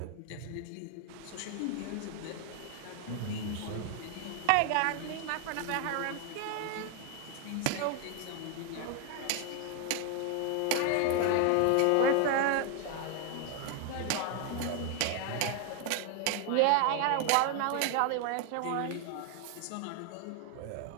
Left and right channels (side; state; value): both; different; correlation 0.01